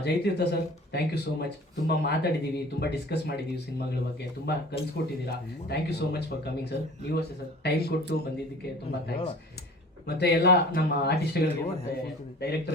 Jayatheertha sir, thank you so much. ತುಂಬ ಮಾತಾಡಿದ್ದೀವಿ, ತುಂಬ ಡಿಸ್ಕಸ್ ಮಾಡಿದ್ದೀವಿ ಸಿನಿಮಾಗಳ ಬಗ್ಗೆ, ತುಂಬ ಕಲಿಸ್ಕೊಟ್ಟಿದ್ದೀರಾ. Thank you so much for coming sir. ನೀವು ಅಷ್ಟೇ ಸರ್, ಟೈಮ್ ಕೊಟ್ಟು ಬಂದಿದ್ದಕ್ಕೆ ತುಂಬ ಥ್ಯಾಂಕ್ಸ್. ಮತ್ತು ಎಲ್ಲ ನಮ್ಮ ಆರ್ಟಿಸ್ಟ್ಗಳಿಗೆ, ಮತ್ತು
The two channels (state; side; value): normal; both; correlation 0.44